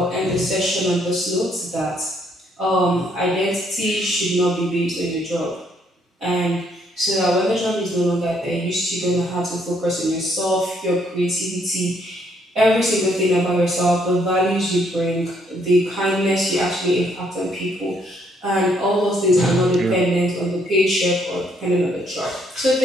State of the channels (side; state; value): both; normal; correlation 0.70